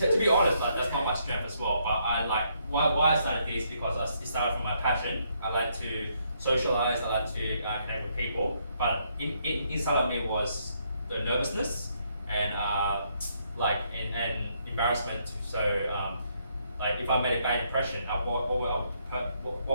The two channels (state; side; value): inverted; both; correlation -0.73